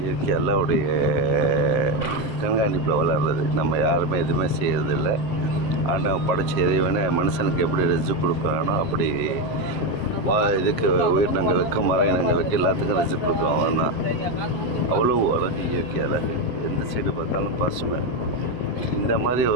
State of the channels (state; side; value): late; right; 7.6 ms